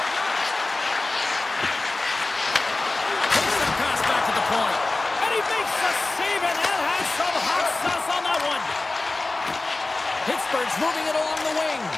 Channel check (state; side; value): quieter; right; 3.2 dB